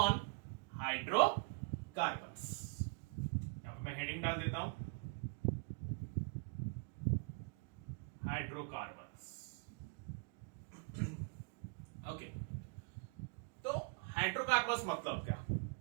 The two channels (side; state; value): left; quieter; 36.5 dB